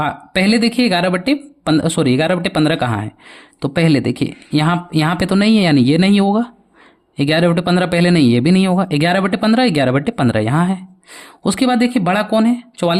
पहले देखिए 11/15 कहाँ है? तो पहले देखिए यहाँ पे तो नहीं है, यानी ये नहीं होगा। 11/15 पहले नहीं, ये भी नहीं होगा। 11/15, 11/15 यहाँ है। उसके बाद देखिए बड़ा कौन है?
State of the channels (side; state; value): both; identical; correlation 1.00